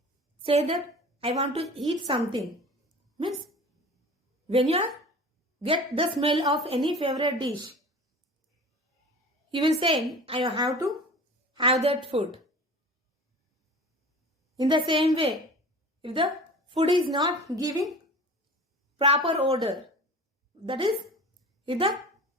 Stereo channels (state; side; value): normal; both; correlation 0.39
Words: say that I want to eat something. Means when you get the smell of any favorite dish, you will say I have to have that food. In the same way, if the food is not giving proper odor, that is, if the